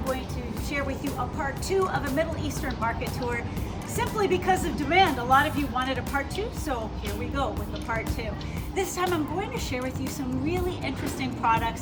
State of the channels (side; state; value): both; identical; correlation 1.00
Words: going to share with you a part 2 of a Middle Eastern market tour simply because of demand. A lot of you wanted a part 2, so here we go with the part 2. This time I'm going to share with you some really interesting